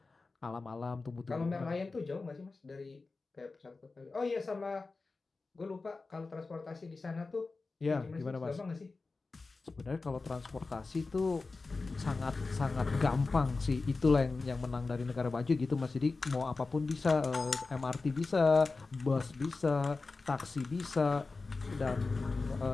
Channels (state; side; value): quieter; right; 3.8 dB